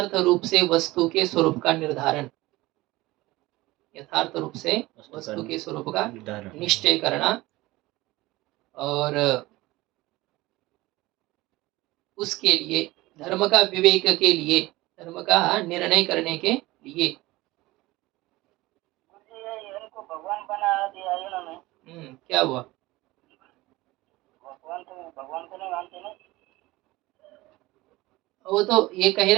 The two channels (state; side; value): quieter; left; 19.6 dB